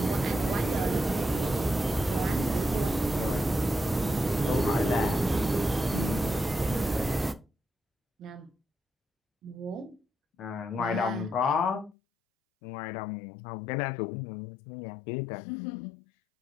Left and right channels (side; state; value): right; drops out; at 12.0 s